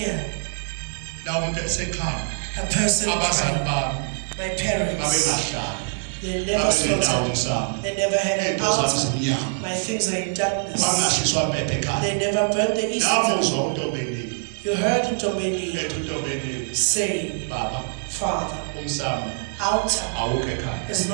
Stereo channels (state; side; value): silent; left; 63 dB below the other